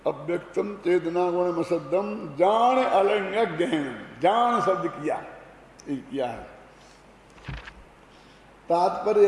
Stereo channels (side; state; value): both; identical; correlation 1.00